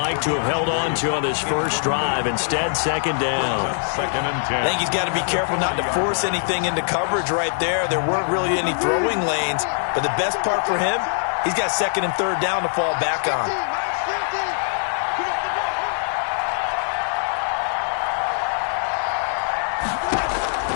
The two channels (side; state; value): right; silent; digital silence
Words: to have held on to on this first drive. Instead, 2nd down. 2nd and 10. I think he's got to be careful not to force anything into coverage right there. There weren't really any throwing lanes. But the best part for him, he's got 2nd and 3rd down to fall back on.